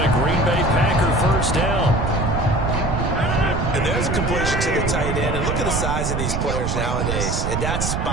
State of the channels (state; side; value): noise; right; rumble, 1 dB below the sound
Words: a Green Bay Packer 1st down. And there's a completion to the tight end. And look at the size of these players nowadays. At that